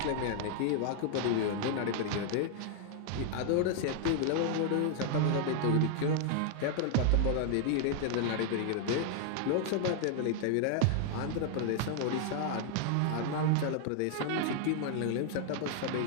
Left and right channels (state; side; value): different; both; correlation 0.00